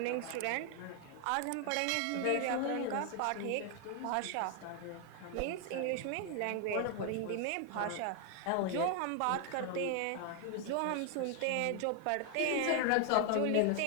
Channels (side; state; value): both; different; correlation 0.00